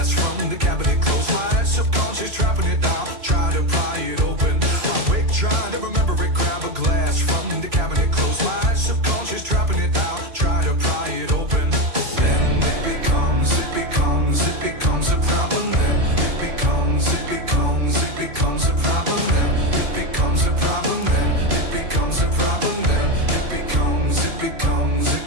from the cabinet, close my eyes, subconscious trapping it down, try to pry it open. I wake, trying to remember it, grab a glass from the cabinet, close my eyes, subconscious trapping it down, try to pry it open. Then it becomes a problem. Then it becomes a problem. Then it becomes a problem. Then it becomes a problem. Then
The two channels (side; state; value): left; late; 3.1 ms